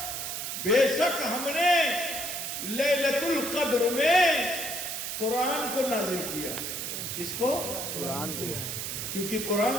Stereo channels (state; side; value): noise; right; hiss, 4 dB below the sound